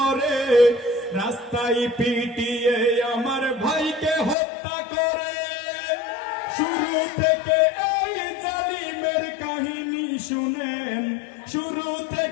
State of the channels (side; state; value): right; drops out; at 4.4 s